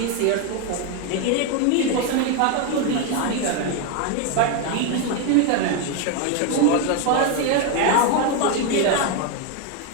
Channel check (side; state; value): both; different; correlation 0.02